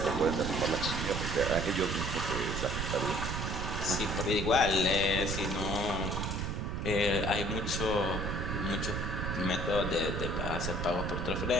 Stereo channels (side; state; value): right; noise; rumble, 2 dB below the sound